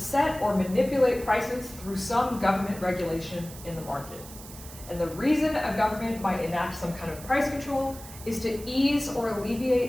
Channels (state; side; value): noise; right; hiss, 16 dB below the sound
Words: or manipulate prices through some government regulation in the market. And the reason a government might enact some kind of price control is to ease or